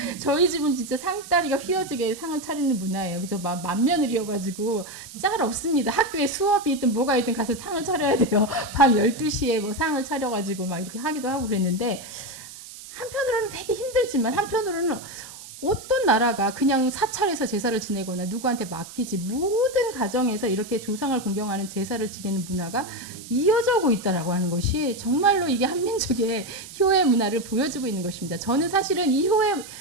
저희 집은 진짜 상다리가 휘어지게 상을 차리는 문화예요. 그래서 맏며느리여가지고 짤 없습니다. 학교에 수업이 있든 뭐가 있든 가서 상을 차려야 돼요. 밤 12시에 뭐 상을 차려가지고 막 이렇게 하기도 하고 그랬는데, 한편으로는 되게 힘들지만 한편으로는 어떤 나라가 그냥 사찰에서 제사를 지내거나 누구한테 맡기지, 모든 가정에서 이렇게 조상을 공경하는 제사를 지내는 문화가 이어져 오고 있다라고 하는 것이 정말로 이게 한민족의 효의 문화를 보여주고 있는 것입니다. 저는 사실은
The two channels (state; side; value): noise; right; hiss, 15 dB below the sound